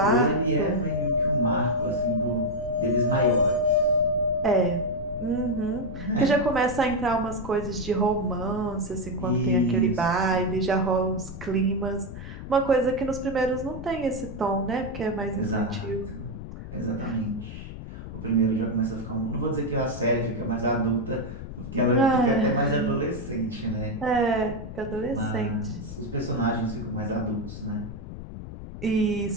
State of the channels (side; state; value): left; noise; rumble, 10 dB below the sound